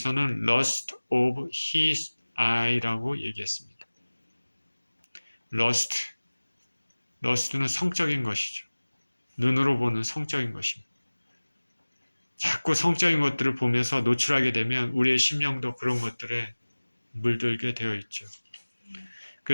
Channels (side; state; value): both; inverted; correlation -1.00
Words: lust of his eye라고 얘기했습니다. lust는 성적인 것이죠. 눈으로 보는 성적인 것입니다. 자꾸 성적인 것들을 보면서 노출하게 되면 우리의 심령도 그런 것들에 물들게 되어 있죠.